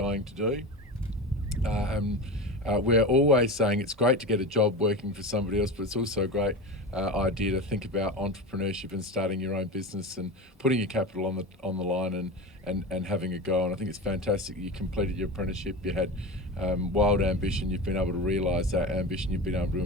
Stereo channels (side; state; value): both; normal; correlation 0.25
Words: to do. We're always saying it's great to get a job working for somebody else, but it's also a great idea to think about entrepreneurship and starting your own business and putting your capital on the line and having a go. And I think it's fantastic you completed your apprenticeship, you had wild ambition, you've been able to realise that ambition, you've been able to